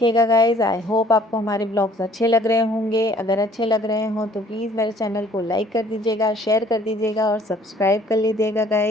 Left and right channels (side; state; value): both; normal; correlation 0.56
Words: गाइस। आई होप आपको हमारे व्लॉग्स अच्छे लग रहे होंगे। अगर अच्छे लग रहे हों तो प्लीज़ मेरे चैनल को लाइक कर दीजिएगा, शेयर कर दीजिएगा और सब्सक्राइब कर लीजिएगा